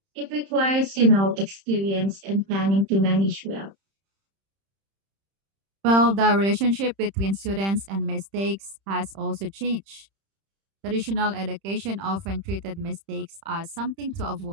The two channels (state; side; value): late; left; 31 ms